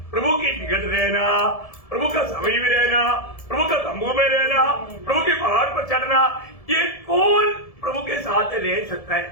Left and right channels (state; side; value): late; right; 1.7 ms